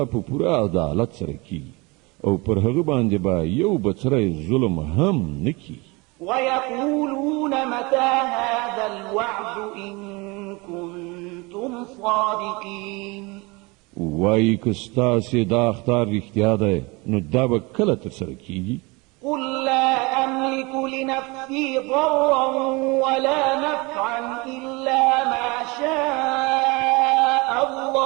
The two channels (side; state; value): left; quieter; 26.0 dB